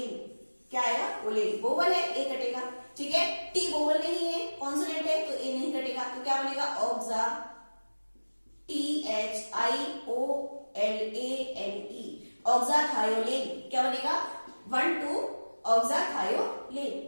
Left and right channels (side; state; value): both; inverted; correlation -1.00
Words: क्या आएगा? ओलेन। वोवल है, ए कटेगा, ठीक है। टी वोवल नहीं है, कॉन्सोनेंट है, तो ए नहीं कटेगा, तो क्या बनेगा? ऑक्सा, THIOLANE, ऑक्साथायोलेन। क्या बनेगा? 1 2 ऑक्साथायोलेन।